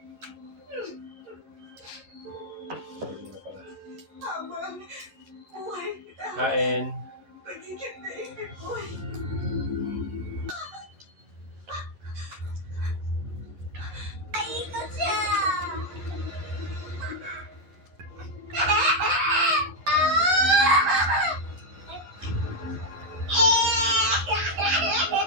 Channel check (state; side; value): late; left; 11 ms